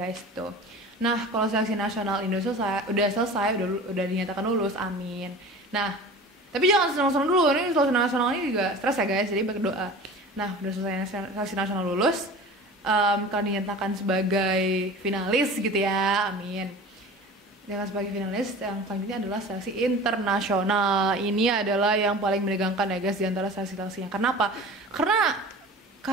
tuh. Nah, kalau seleksi nasional Indo udah selesai, udah dinyatakan lulus, amin. Nah, tapi jangan senang-senang dulu, ini seleksi nasional ini juga stres ya guys, jadi berdoa. Nah, udah selesai seleksi nasional lulus, kalau dinyatakan sebagai finalis gitu ya, amin. Dengan sebagai finalis, yang selanjutnya adalah seleksi internasional. Ini adalah yang paling menegangkan ya guys di antara seleksi-seleksinya. Kenapa?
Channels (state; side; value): normal; both; correlation 0.38